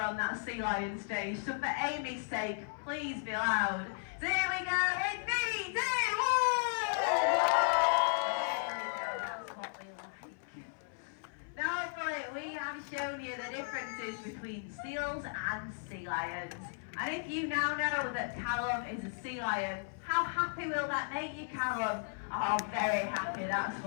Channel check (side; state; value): right; silent; 54 dB below the other